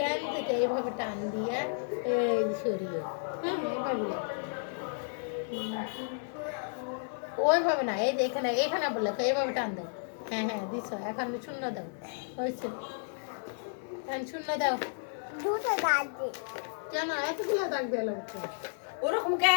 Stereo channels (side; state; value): right; silent; digital silence